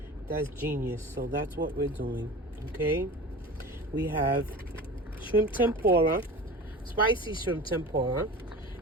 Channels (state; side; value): normal; both; correlation 0.35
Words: That's genius. So that's what we're doing. Okay. We have shrimp tempura, spicy shrimp tempura.